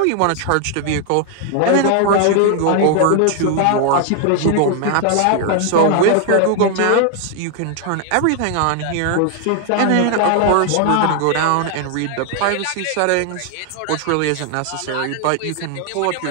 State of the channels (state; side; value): different; both; correlation 0.00